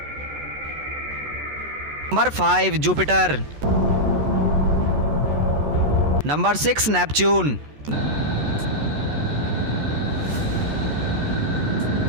number 5 Jupiter, number 6 Neptune,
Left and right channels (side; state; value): left; late; 14 ms